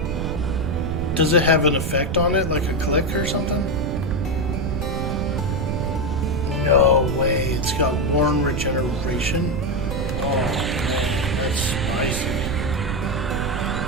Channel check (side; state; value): right; noise; rumble, 2 dB below the sound